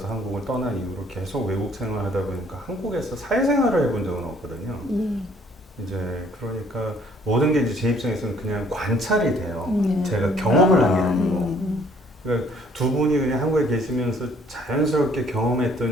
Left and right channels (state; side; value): normal; both; correlation 0.61